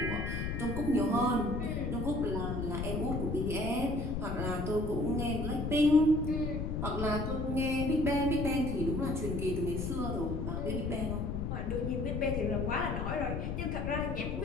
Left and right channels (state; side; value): noise; left; rumble, 2 dB below the sound